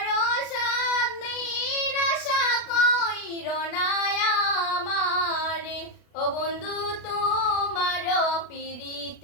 সাদ, নিরাশা কইর না আমারে। ও বন্ধু তোমার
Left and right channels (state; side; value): late; right; 32 ms